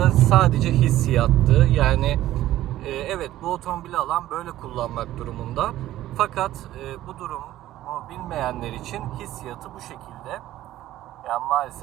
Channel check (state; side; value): quieter; left; 14.2 dB